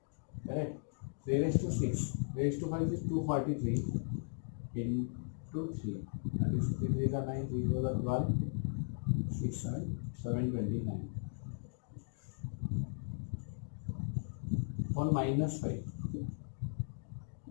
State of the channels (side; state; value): right; silent; digital silence